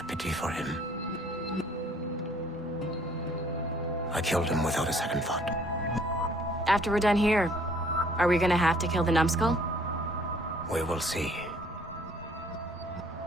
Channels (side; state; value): both; normal; correlation 0.59